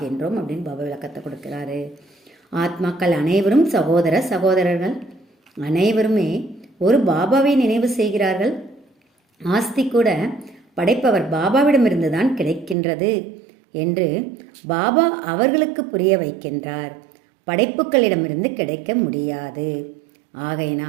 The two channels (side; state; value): left; drops out; at 12.8 s